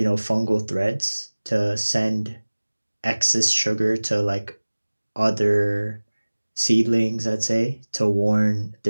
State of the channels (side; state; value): both; inverted; correlation -1.00